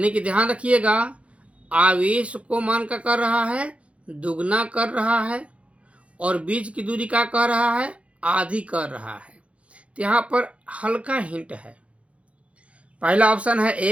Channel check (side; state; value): left; late; 0.062 ms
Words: कि ध्यान रखिएगा, आवेश को मान का कर रहा है, दुगना कर रहा है, और बीच की दूरी का कर रहा है, आधी कर रहा है। तो यहाँ पर हल्का हिंट है, पहला ऑप्शन है